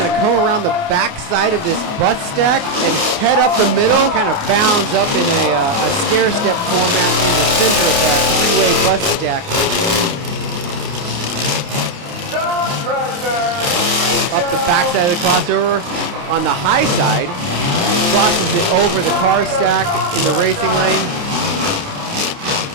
to come around the backside of this bus stack and head up the middle. Kind of bounds up in a stair-step format in the center of that 3-way bus stack. Up the backside of the crossover on the high side. Crosses it over the car stack in the racing lane.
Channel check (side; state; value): left; late; 29 ms